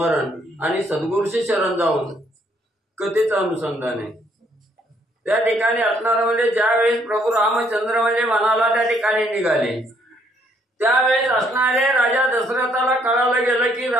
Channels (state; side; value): normal; both; correlation 0.68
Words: आणि सद्गुरूशी शरण जाऊन कथेचं अनुसंधान आहे। त्या ठिकाणी असणारं म्हणजे ज्यावेळेस प्रभू रामचंद्र म्हणजे वनाला त्या ठिकाणी निघाले त्यावेळेस असणारे राजा दशरथाला कळालं गेलं की